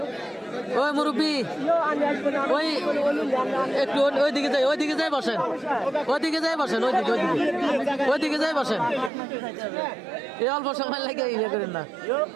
ওই মুরব্বী, ওই একটু ওইদিকে যাই, ওইদিকে যাই বসেন, ওইদিকে যাই বসেন, ওইদিকে ওইদিকে ওইদিকে যাই বসেন। এই অল্প সময় লাগে ইয়ে করেন না।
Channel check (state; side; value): drops out; left; at 9.1 s